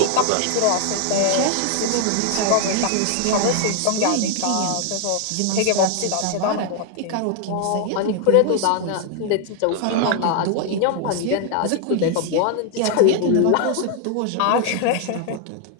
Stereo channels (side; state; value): both; different; correlation 0.00